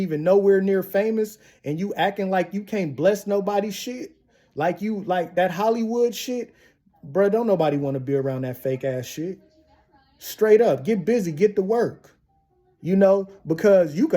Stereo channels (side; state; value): both; identical; correlation 1.00